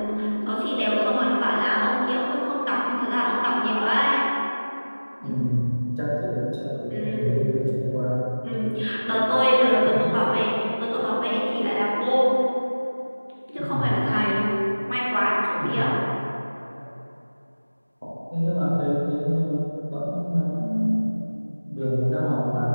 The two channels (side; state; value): both; inverted; correlation -1.00